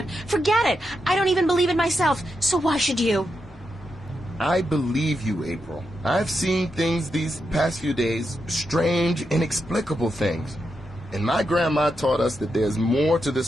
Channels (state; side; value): normal; both; correlation 0.85